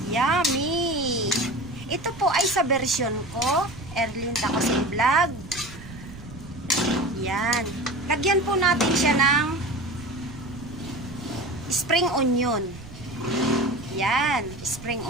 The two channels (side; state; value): right; noise; rumble, 16 dB below the sound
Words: Yummy! Ito po ay sa version ko, Erlyn Tacosin Vlog. Yan. Lagyan po natin siya ng spring onion. Yan, spring